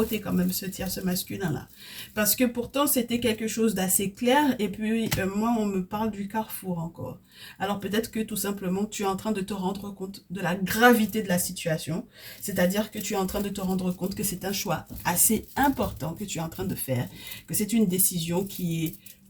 quand même ce masculin-là. Parce que pourtant, c'était quelque chose d'assez clair. Et puis, moi, on me parle du carrefour encore. Alors peut-être que tout simplement, tu es en train de te rendre compte de la gravité de la situation. C'est-à-dire que tu es en train de te rendre compte que c'est un choix assez important que tu es en train de faire. Que c'est une décision qui est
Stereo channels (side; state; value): both; identical; correlation 1.00